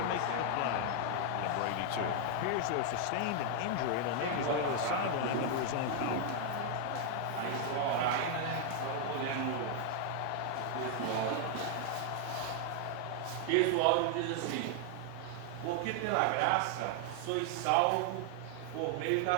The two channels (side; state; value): both; different; correlation 0.00